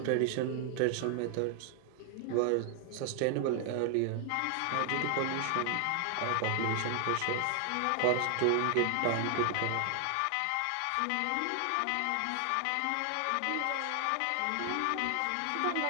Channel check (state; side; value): different; both; correlation 0.00